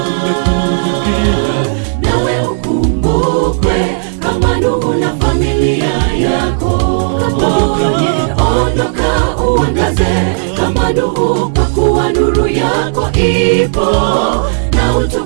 Nawe ukumbukwe kama Nuhu na familia yako, ondoka uangaze kama Nuhu, kwa kuwa nuru yako ipo na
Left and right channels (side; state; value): left; silent; digital silence